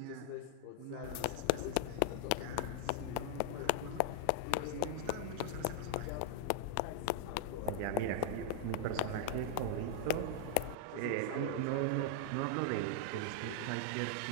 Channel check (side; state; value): both; different; correlation -0.01